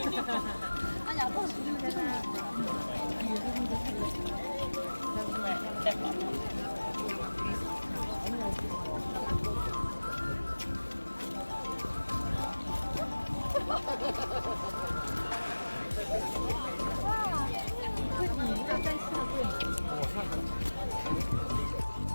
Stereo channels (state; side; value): inverted; both; correlation -1.00